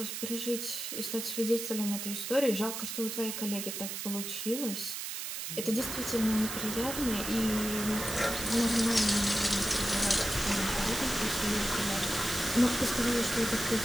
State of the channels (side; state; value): right; noise; hiss, 5 dB below the sound